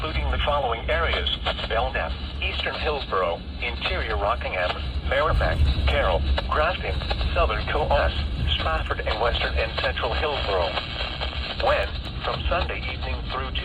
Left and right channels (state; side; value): identical; both; correlation 1.00